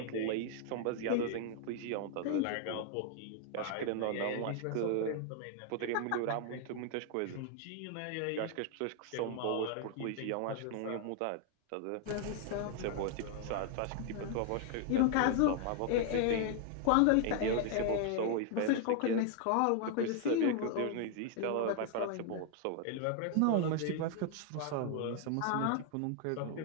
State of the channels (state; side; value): different; both; correlation 0.00